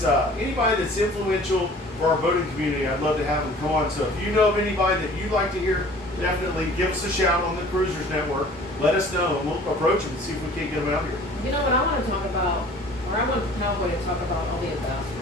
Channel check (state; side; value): normal; both; correlation 0.48